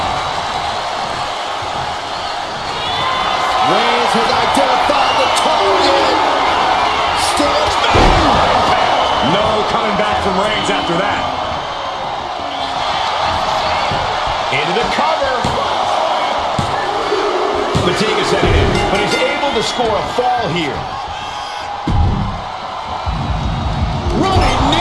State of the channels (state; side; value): identical; both; correlation 1.00